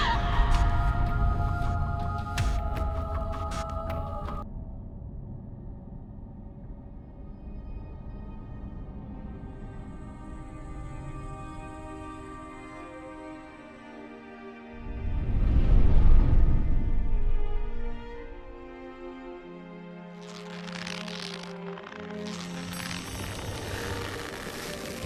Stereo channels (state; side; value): identical; both; correlation 1.00